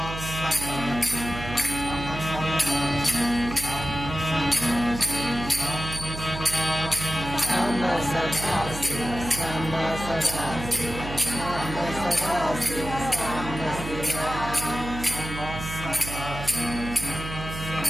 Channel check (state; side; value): noise; right; hum, 8 dB below the sound